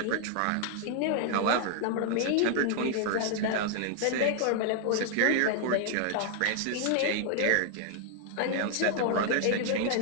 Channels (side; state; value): both; different; correlation 0.00